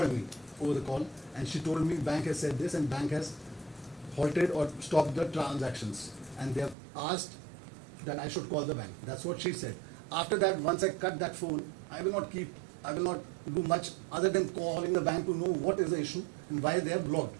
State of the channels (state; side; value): drops out; left; at 6.8 s